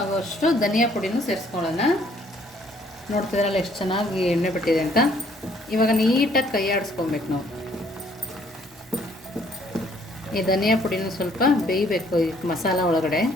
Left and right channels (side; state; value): both; normal; correlation 0.63